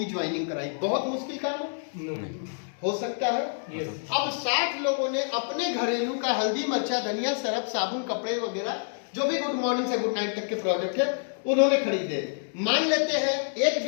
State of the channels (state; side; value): silent; right; digital silence